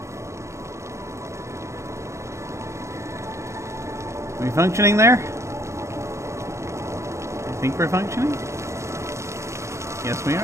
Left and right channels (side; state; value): left; late; 0.14 ms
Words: Are we functioning there? I think we're functioning? Yes, we